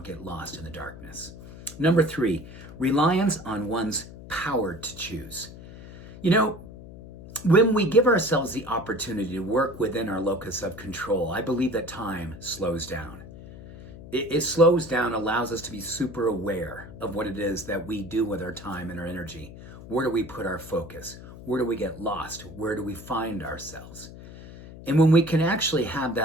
get lost in the darkness. Number 3, reliance on one's power to choose. You know, when we give ourselves the opportunity to work within our locus of control, I believe that time slows down. It slows down, allows us to be super aware of what it is that we do with our time and our energy. Where do we put our focus? Where do we get lost? Where do we find ourselves? And when we can actually have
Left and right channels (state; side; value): noise; left; hum, 15 dB below the sound